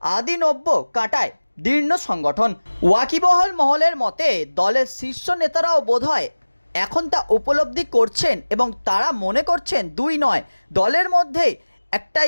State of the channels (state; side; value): inverted; both; correlation -1.00